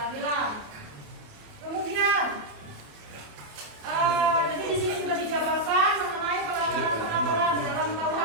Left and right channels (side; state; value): left; late; 28 ms